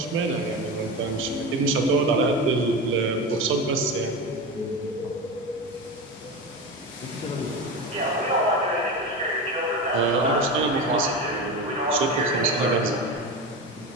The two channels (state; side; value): normal; both; correlation 0.23